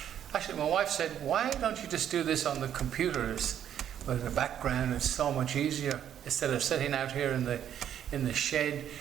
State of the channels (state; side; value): quieter; left; 9.9 dB